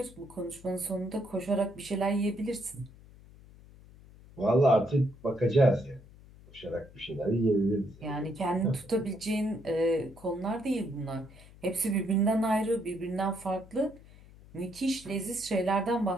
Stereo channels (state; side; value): noise; left; hum, 22 dB below the sound